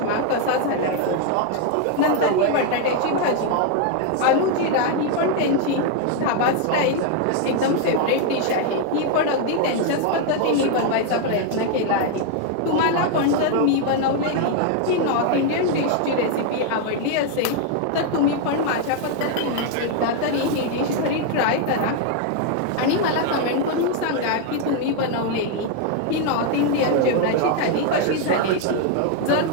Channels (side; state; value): both; different; correlation 0.00